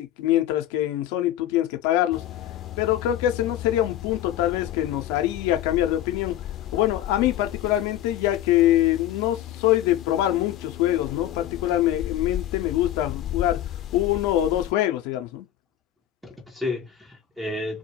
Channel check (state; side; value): quieter; right; 12.4 dB